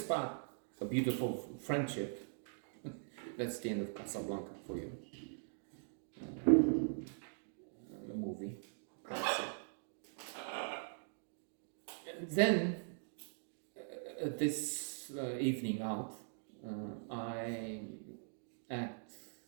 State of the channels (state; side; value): silent; left; digital silence